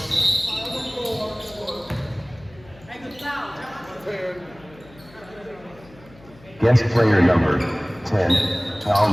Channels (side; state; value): left; noise; hum, 24 dB below the sound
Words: Guest player number 10, foul